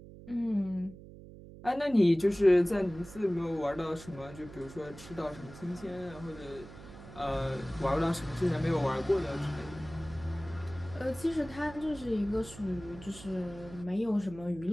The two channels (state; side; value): noise; right; hum, 16 dB below the sound